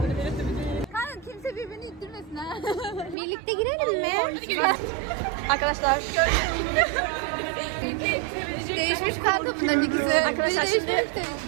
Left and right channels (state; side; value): drops out; left; at 3.2 s